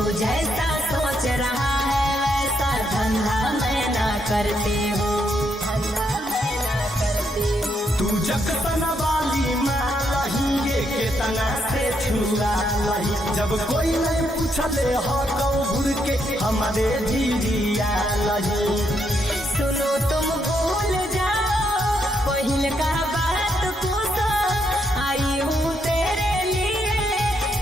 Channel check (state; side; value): normal; both; correlation 0.76